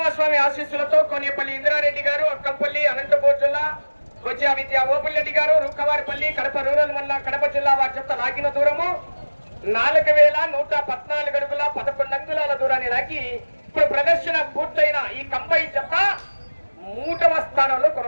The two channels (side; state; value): both; inverted; correlation -1.00